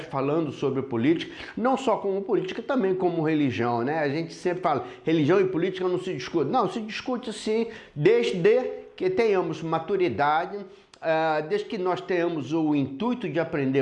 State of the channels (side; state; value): both; identical; correlation 1.00